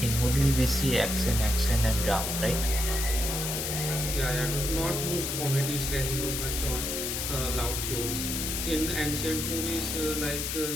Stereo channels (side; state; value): left; noise; hiss, 2 dB below the sound